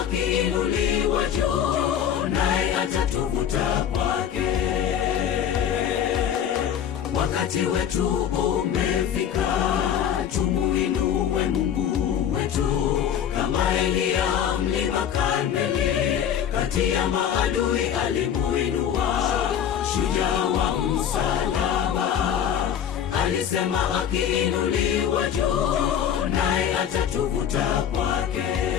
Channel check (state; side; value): quieter; right; 9.1 dB